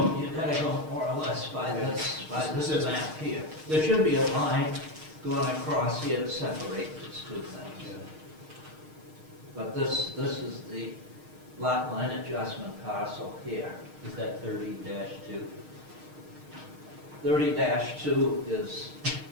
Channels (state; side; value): late; left; 6.5 ms